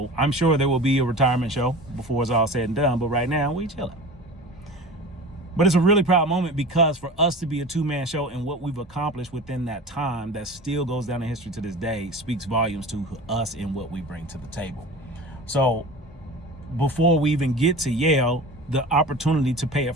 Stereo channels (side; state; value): both; normal; correlation 0.36